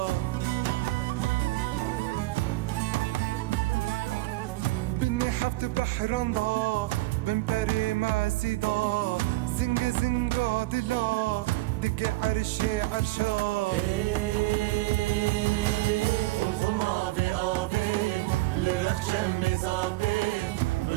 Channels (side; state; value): left; quieter; 19.7 dB